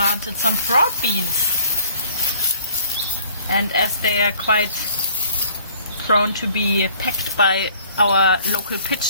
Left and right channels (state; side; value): inverted; both; correlation -0.55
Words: some broad beans. And as they are quite prone to be pecked by our local